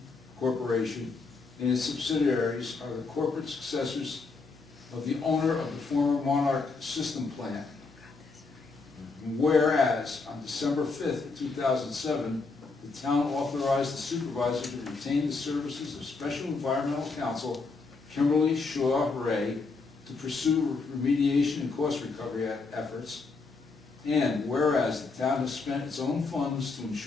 Corporation and its subsidiaries are the corporate successors of the owner of the former Monarch System plant. Whereas on December 5th, 2007, the town authorized the supervisor to retain the services of Special Environmental Counsel Kimberly Shaw Ray to pursue remediation and cost recovery efforts. And whereas the town has spent its own funds to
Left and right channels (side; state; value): right; quieter; 4.1 dB